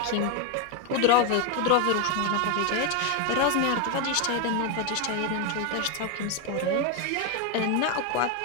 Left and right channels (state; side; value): different; both; correlation 0.02